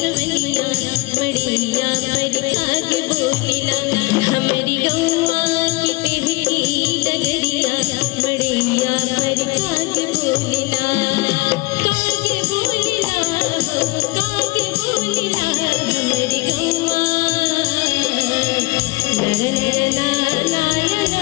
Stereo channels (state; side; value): quieter; right; 24.5 dB